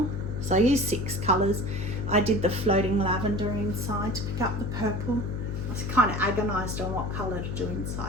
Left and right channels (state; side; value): noise; left; hum, 4 dB below the sound